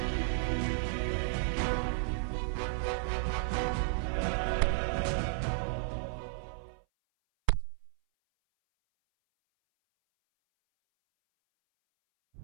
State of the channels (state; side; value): silent; left; 56 dB below the other